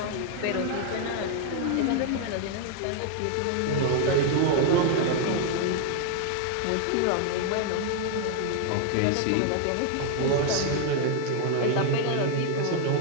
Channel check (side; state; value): both; different; correlation 0.00